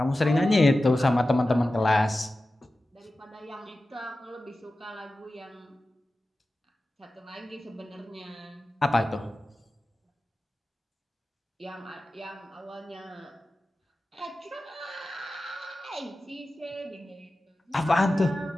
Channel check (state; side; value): normal; both; correlation 0.94